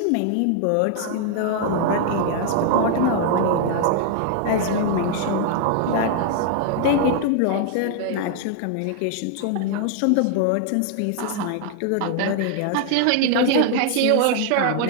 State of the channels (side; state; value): both; different; correlation 0.00